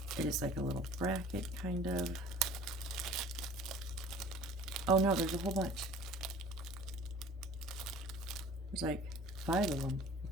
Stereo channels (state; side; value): normal; both; correlation 0.46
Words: It is like a little bracket, kind of. Oh no, there's a whole bunch. There's like 5 of them.